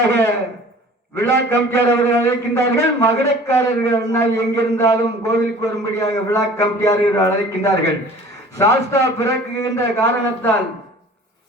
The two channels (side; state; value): both; normal; correlation 0.47